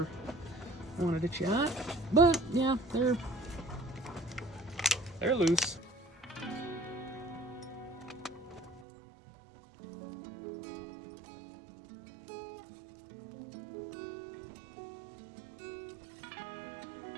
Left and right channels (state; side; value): drops out; left; at 8.8 s